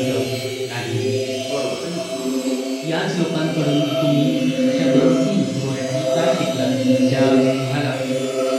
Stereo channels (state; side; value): identical; both; correlation 1.00